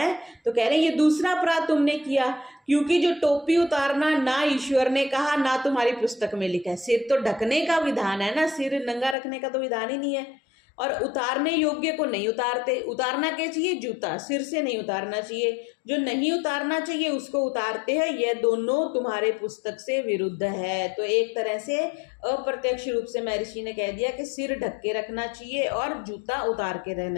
तो कह रहे हैं ये दूसरा अपराध तुमने किया, क्योंकि जो टोपी उतारना ना ईश्वर ने कहा ना तुम्हारी पुस्तक में लिखा है। सिर तो ढकने का विधान है ना, सिर नंगा रखने का तो विधान ही नहीं है। और उतारने योग्य को नहीं उतारते। उतारना क्या चाहिए? जूता, सिर से नहीं उतारना चाहिए। जो नहीं उतारना चाहिए उसको उतारते हैं। यह दोनों तुम्हारे पुस्तक से विरुद्ध है। तो एक तरह से अप्रत्यक्ष रूप से महर्षि ने कह दिया कि सिर ढक के रखना चाहिए और जूता उतार के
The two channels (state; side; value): drops out; right; at 9.2 s